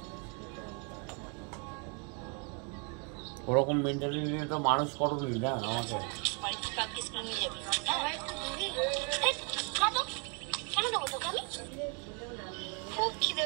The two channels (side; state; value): left; quieter; 36.2 dB